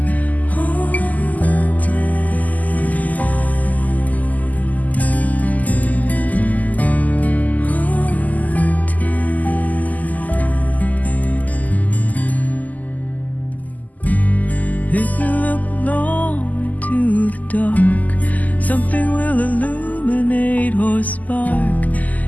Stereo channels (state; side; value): late; right; 0.079 ms